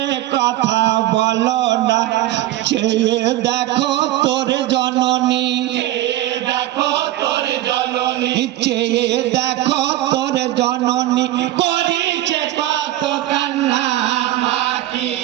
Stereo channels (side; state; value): left; quieter; 15.1 dB